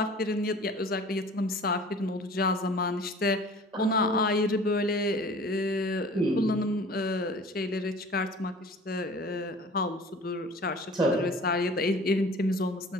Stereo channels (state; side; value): normal; both; correlation 0.45